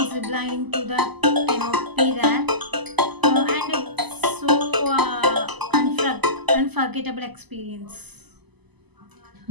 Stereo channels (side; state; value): left; late; 0.99 ms